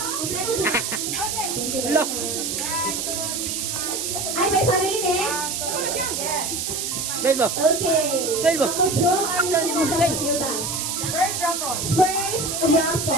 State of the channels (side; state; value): right; noise; hiss, 2 dB below the sound